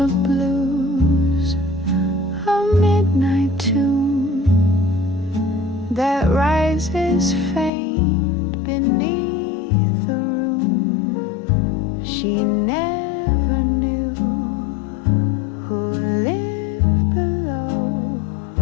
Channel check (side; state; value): right; drops out; at 7.7 s